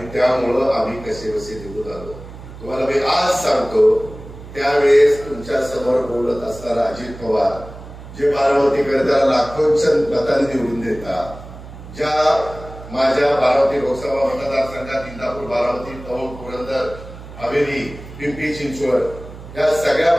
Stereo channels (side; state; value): right; noise; hum, 15 dB below the sound